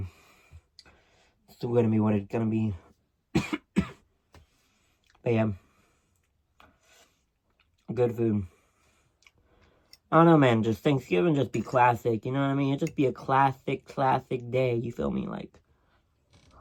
still going to be what it's going to be. But yeah. Good food. I don't know, man. Just Thanksgiving just be classic. You know what I mean? It just be a classic day. You feel me? Like,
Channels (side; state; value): both; identical; correlation 1.00